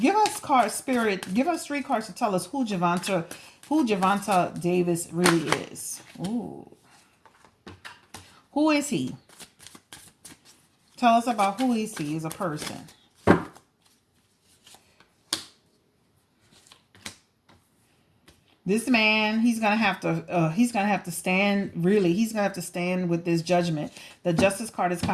give us Spirit, give us 3 cards to tell us who Gervonta Davis really is. Ooh. Who is he? Tell us about who is he as a person. This man, he's gonna have to stand. Really, he's gonna have to stand with this judgment. The Justice card is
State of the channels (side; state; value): both; identical; correlation 1.00